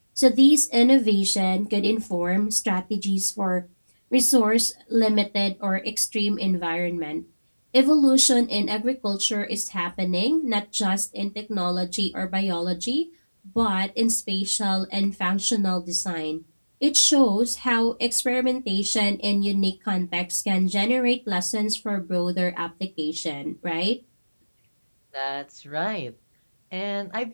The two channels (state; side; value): inverted; both; correlation -1.00